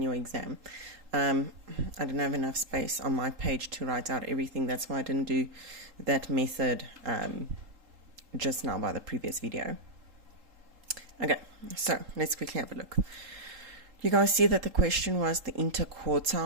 your exam. I didn't have enough space on my page to write out everything. That's why I didn't do that method just now by the previous video. Okay, so let's quickly have a look. You guys see that the question was the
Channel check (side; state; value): left; late; 3.8 ms